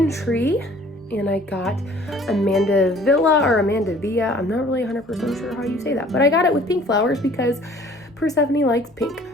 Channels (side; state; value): both; normal; correlation 0.53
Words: tree and I got Amanda Villa or Amanda Villa. I'm not really 100% sure how you say that, but I got it with pink flowers because Persephone likes pink.